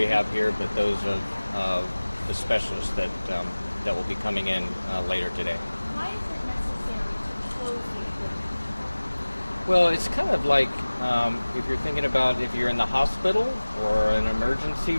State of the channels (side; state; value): both; inverted; correlation -1.00